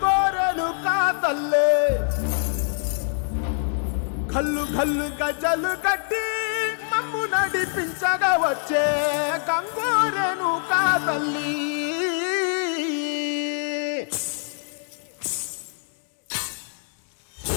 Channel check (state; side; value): silent; right; 62 dB below the other